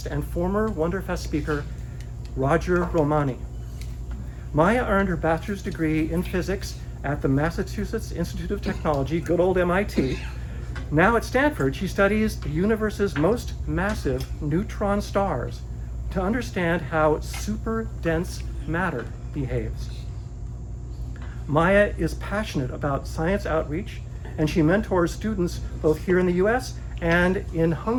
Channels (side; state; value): both; identical; correlation 1.00